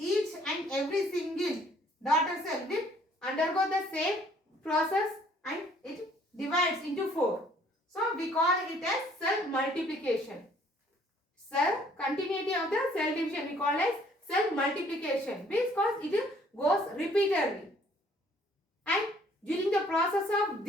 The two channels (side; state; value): both; normal; correlation 0.61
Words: and every single daughter cell will undergo the same process and it divides into four. So we call it as cell multiplication. Cell continuity of the cell division we call as cell multiplication, because it goes repeatedly. And during the process of